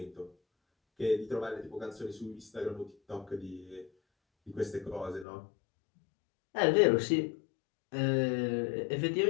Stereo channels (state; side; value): drops out; right; at 5.2 s